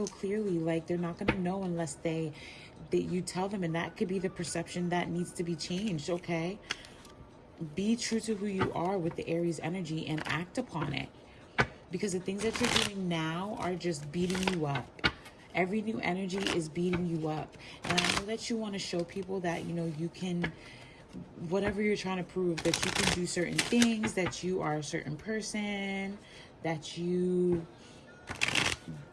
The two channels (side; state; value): both; identical; correlation 1.00